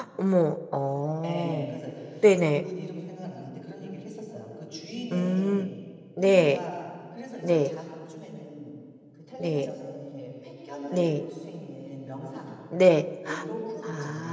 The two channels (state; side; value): identical; both; correlation 1.00